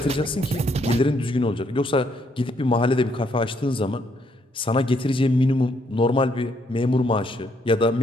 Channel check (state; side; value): normal; both; correlation 0.72